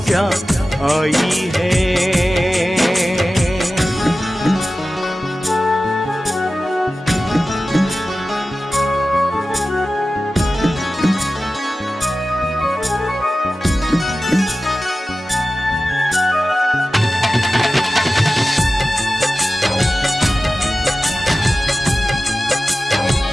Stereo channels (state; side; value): normal; both; correlation 0.95